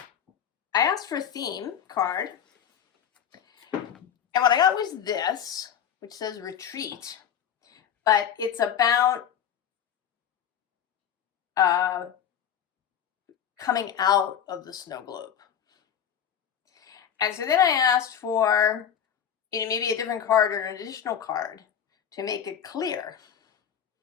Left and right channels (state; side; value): quieter; right; 8.7 dB